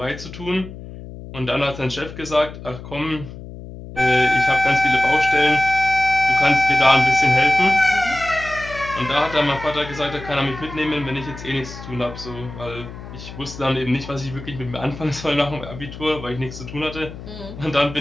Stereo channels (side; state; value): left; noise; hum, 13 dB below the sound